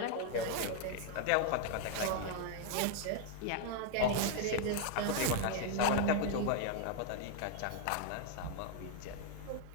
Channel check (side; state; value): both; different; correlation 0.00